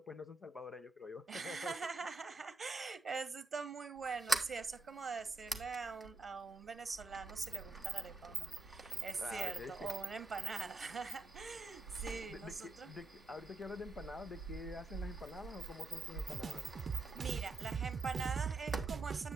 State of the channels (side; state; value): left; quieter; 3.3 dB